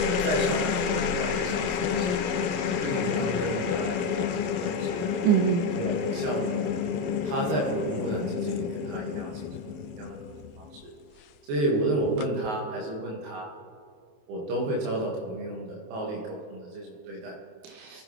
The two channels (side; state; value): left; late; 27 ms